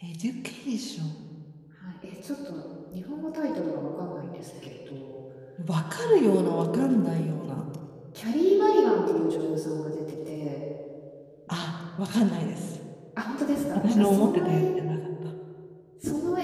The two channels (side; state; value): both; identical; correlation 1.00